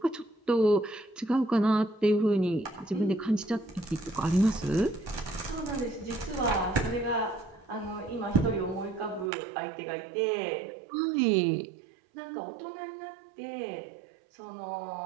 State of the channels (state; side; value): drops out; left; at 9.3 s